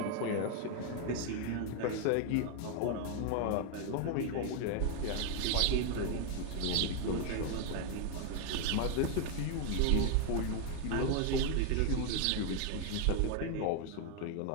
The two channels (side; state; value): both; different; correlation 0.00